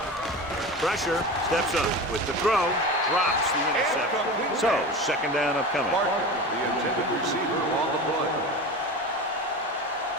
Pressure, steps up with the throw, drops the interception. So, second down upcoming. Parker, the intended receiver on the play.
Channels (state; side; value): normal; both; correlation 0.29